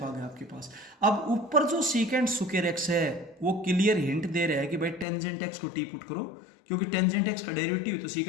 आ गया आपके पास। अब ऊपर जो सीकेंट स्क्वायर x है वो क्लियर हिंट दे रहा है कि भाई टेंजेंट x को टी पुट करो, क्योंकि टेंजेंट x का डेरिवेटिव तो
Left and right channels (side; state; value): right; drops out; at 5.1 s